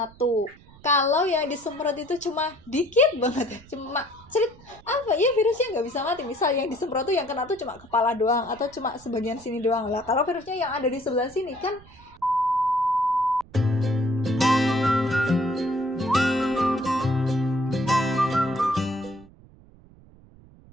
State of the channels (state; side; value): noise; right; rumble, 24 dB below the sound